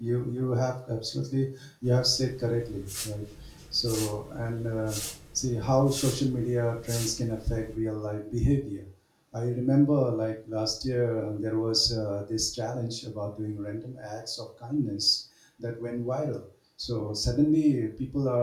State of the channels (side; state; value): both; identical; correlation 1.00